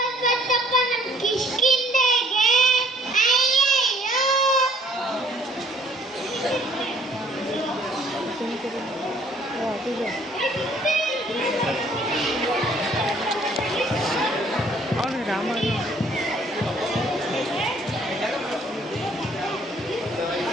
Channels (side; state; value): both; normal; correlation 0.59